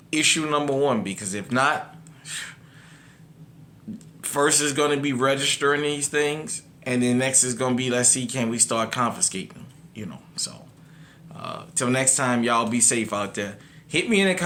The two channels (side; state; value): both; identical; correlation 1.00